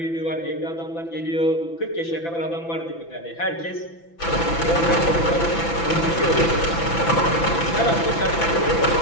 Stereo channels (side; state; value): right; late; 6.0 ms